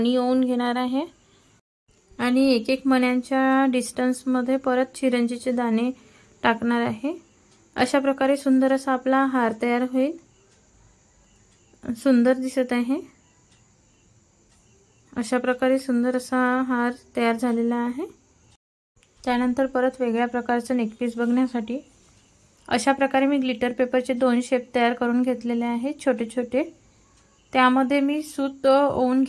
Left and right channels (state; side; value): identical; both; correlation 1.00